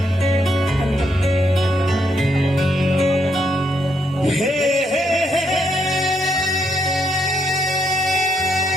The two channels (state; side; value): normal; both; correlation 0.75